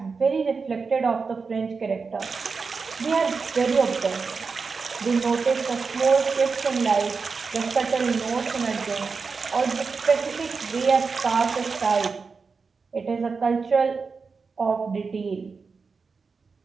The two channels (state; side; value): quieter; left; 4.8 dB